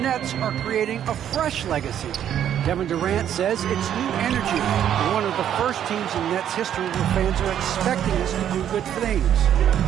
Nets are creating a fresh legacy. Kevin Durant says it's new energy. We're one of the first teams in Nets history where fans are expecting us to do good things.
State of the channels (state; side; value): quieter; left; 10.0 dB